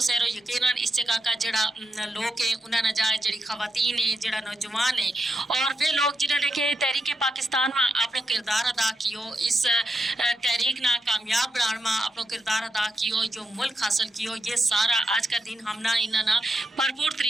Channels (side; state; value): both; normal; correlation 0.84